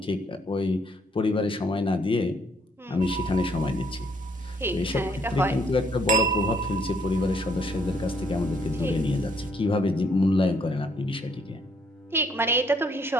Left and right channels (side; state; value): both; normal; correlation 0.68